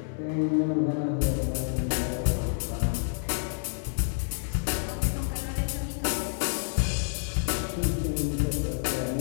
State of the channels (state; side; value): silent; right; digital silence